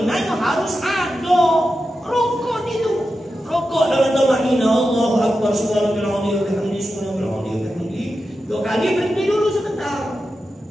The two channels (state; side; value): normal; both; correlation 0.90